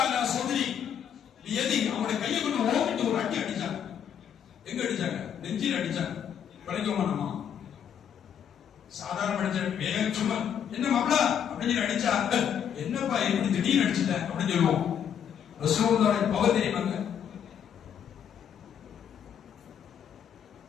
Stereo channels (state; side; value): quieter; right; 8.7 dB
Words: அலா ஸத்ரி பியதி, அவருடைய கையை கொண்டு ஓங்கிட்டு ஒரு அடி அடிச்சாங்க. எங்க அடிச்சாங்க? நெஞ்சில அடிச்சாங்க. பழக்கமா நம்ம சாதாரண அடிச்ச வேகம் சும்மா என்ன மாப்ள அப்படின்னு அடிச்சா, என்னப்பா இப்படி திடீர்னு அடிச்சிட்ட அப்படின்னு சொல்லுவோம். ரசூலுல்லாஹி பவர் தெரியுமாங்க?